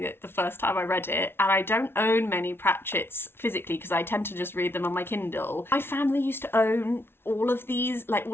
it the first time I read it. And I don't own many Pratchetts physically because I tend to just read them on my Kindle. My family used to own all of these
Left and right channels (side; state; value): right; late; 0.11 ms